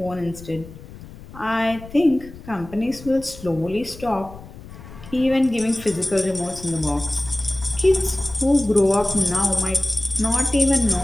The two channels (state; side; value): noise; left; rumble, 17 dB below the sound